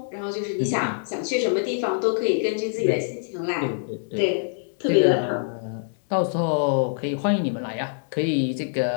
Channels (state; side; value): silent; right; digital silence